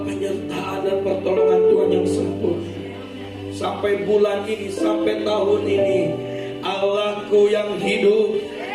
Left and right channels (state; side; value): identical; both; correlation 1.00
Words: penyertaan dan pertolongan Tuhan yang sempurna. Sampai bulan ini, sampai tahun ini, Allahku yang hidup